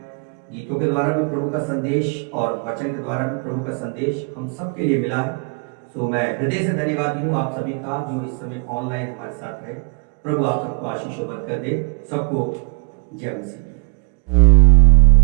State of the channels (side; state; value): left; quieter; 35.1 dB